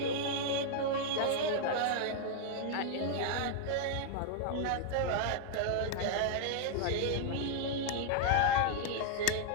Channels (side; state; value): both; different; correlation -0.01